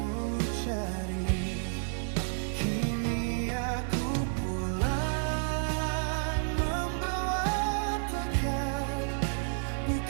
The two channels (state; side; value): silent; left; 57 dB below the other